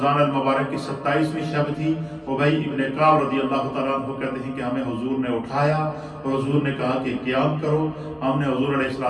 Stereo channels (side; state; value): both; identical; correlation 1.00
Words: المبارک کی 27ویں شب تھی۔ ابی ابن کعب رضی اللہ تعالیٰ عنہ کہتے ہیں کہ ہمیں حضور نے اٹھایا اور حضور نے کہا کہ قیام کرو۔ ہم نے حضور علیہ